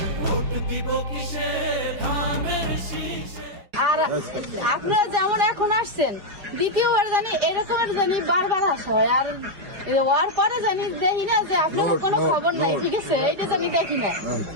আর আপনারা যেমন এখন আসছেন, দ্বিতীয়বার জানি এরকমের জানি বারবার আসা হয়। আর ওর পরে জানি দেখি না যে আপনার কোনো খবর নাই, ঠিক আছে? এইটা জানি দেখি না।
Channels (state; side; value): late; left; 5.1 ms